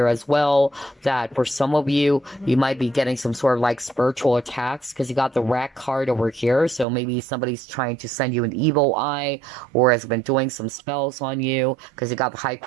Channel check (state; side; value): drops out; left; at 6.9 s